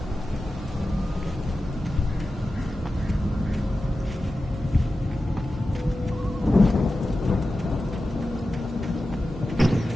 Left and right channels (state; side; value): normal; both; correlation 0.93